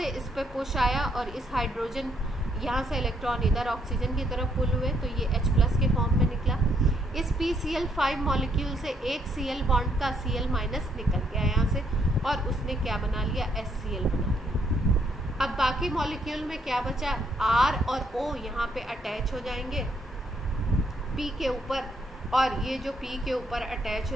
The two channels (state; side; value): normal; both; correlation 0.72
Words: इस पे पुश आया और इस हाइड्रोजन, यहाँ से इलेक्ट्रॉन इधर ऑक्सीजन की तरफ पुल हुए तो ये H+ के फॉर्म में निकला। इस PCl5 मॉलिक्यूल से एक Cl बॉन्ड का Cl- निकल गया यहाँ से और उसने क्या बना लिया, HCl बना लिया। अब बाकी मॉलिक्यूल में क्या बचा, R और O यहाँ पे अटैच हो जाएंगे P के ऊपर, और ये जो P के ऊपर अटैच